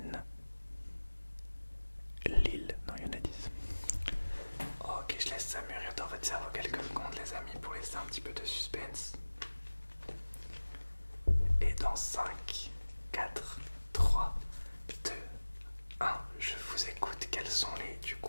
Lille. Non, il y en a 10. Ok, je laisse ça mûrir dans votre cerveau quelques secondes, les amis, pour laisser un petit peu de suspense. Et dans 5, 4, 3, 2, 1, je vous écoute. Quels sont les, du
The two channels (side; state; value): both; inverted; correlation -1.00